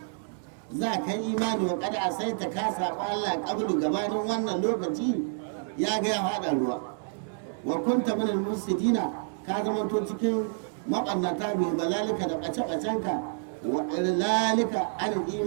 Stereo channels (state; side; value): silent; left; 59 dB below the other